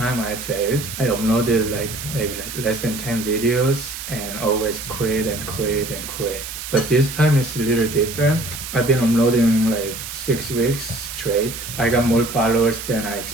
I failed, I uploaded maybe less than 10 videos and always quit and quit and quit. But this time it's a little different. I've been uploading like 6 weeks straight. I got more followers than I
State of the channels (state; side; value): noise; right; hiss, 9 dB below the sound